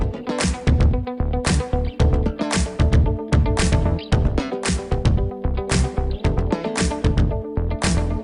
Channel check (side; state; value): both; identical; correlation 1.00